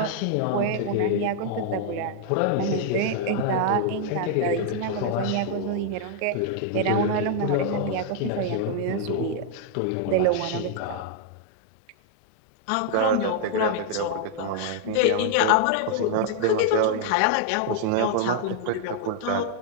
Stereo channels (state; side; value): different; both; correlation 0.00